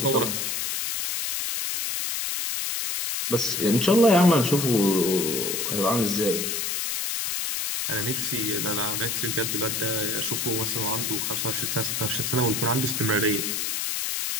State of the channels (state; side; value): noise; left; hiss, 1 dB below the sound